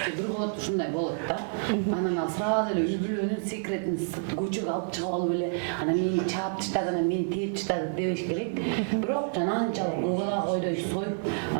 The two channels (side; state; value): left; silent; digital silence